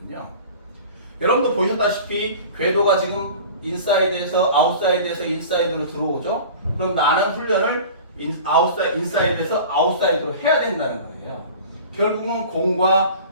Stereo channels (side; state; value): both; inverted; correlation -0.40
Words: 여러분도 보셨다시피 궤도가 지금 인사이드에서 아웃사이드에서 인사이드로 들어오죠. 그럼 나는 훈련을 인사이드에서 아웃사이드로 해야 된다는 거예요. 결국은 공과